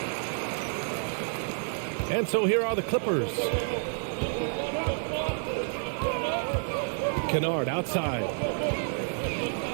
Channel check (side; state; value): left; silent; 58 dB below the other